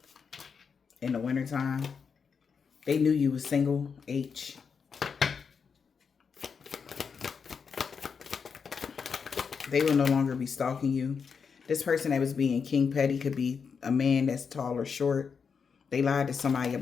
In the wintertime. They knew you was single. H. They will no longer be stalking you. This person that was being king petty could be a man that's tall or short. They lied to somebody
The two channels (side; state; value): right; quieter; 6.0 dB